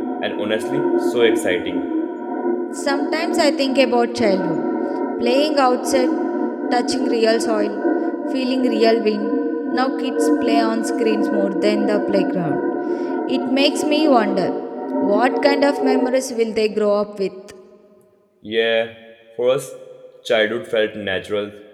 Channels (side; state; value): both; identical; correlation 1.00